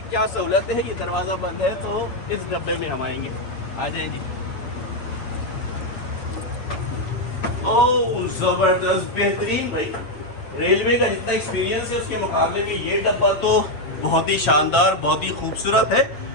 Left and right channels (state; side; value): late; right; 7.3 ms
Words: क्या सहूलतें हैं। ये दरवाज़ा बंद है तो इस डब्बे में हम आएंगे। आ जाएं जी। ओह ज़बरदस्त, बेहतरीन भाई। रेलवे का जितना एक्सपीरियंस है उसके मुकाबले में ये डब्बा तो बहुत ही शानदार, बहुत ही खूबसूरत है।